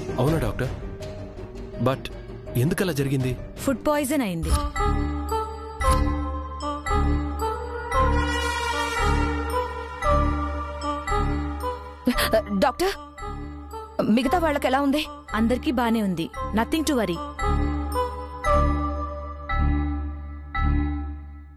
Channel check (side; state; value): both; identical; correlation 1.00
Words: అవునా డాక్టర్? బట్ ఎందుకలా జరిగింది? ఫుడ్ పాయిజన్ అయింది. డాక్టర్, మిగతా వాళ్ళకి ఎలా ఉంది? అందరికీ బానే ఉంది. Nothing to worry.